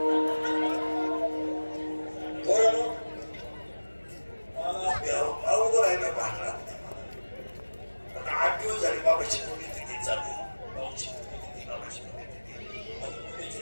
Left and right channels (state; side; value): inverted; both; correlation -1.00